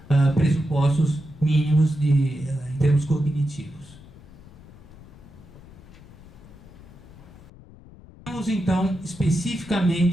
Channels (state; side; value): noise; left; rumble, 20 dB below the sound